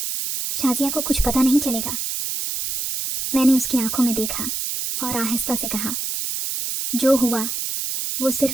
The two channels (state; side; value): noise; right; hiss, 3 dB below the sound